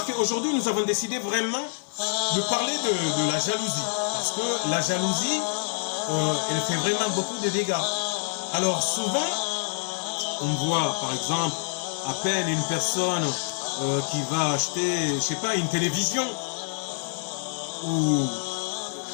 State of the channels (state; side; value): silent; right; 61 dB below the other